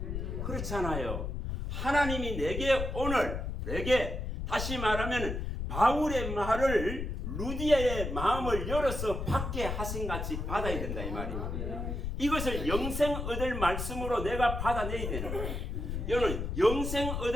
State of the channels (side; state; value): left; noise; rumble, 4 dB below the sound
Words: 그렇잖아요. 하나님이 내게 다시 말하면 바울의 말을 루디아의 마음을 열어서 받게 하신 같이 받아야 된다 이 말입니다. 이것을 영생 얻을 말씀으로 내가 받아내야 되는 거예요. 여러분 영생